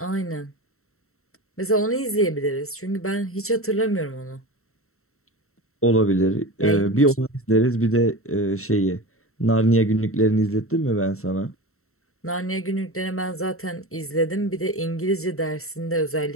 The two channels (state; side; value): late; right; 0.63 ms